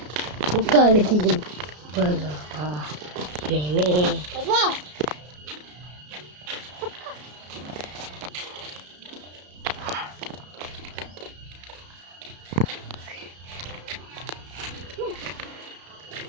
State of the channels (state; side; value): late; left; 33 ms